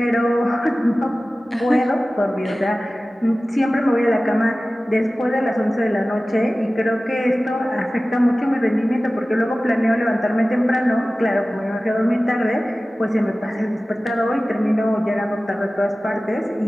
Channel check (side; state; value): both; normal; correlation 0.97